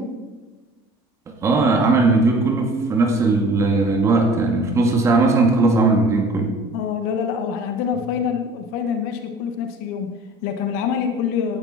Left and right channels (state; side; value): normal; both; correlation 0.47